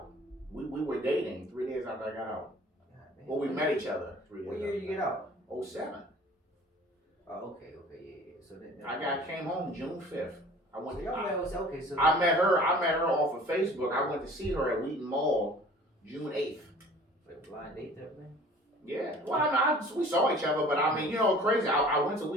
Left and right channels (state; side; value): normal; both; correlation 0.48